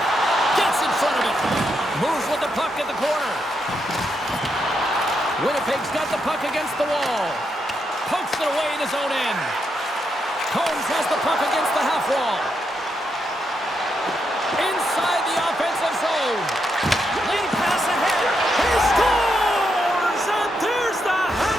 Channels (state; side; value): normal; both; correlation 0.81